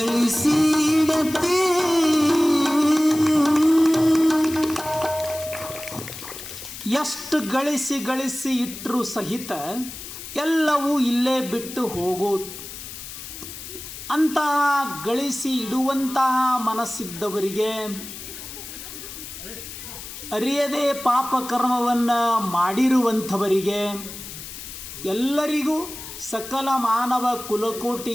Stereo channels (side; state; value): left; noise; hiss, 11 dB below the sound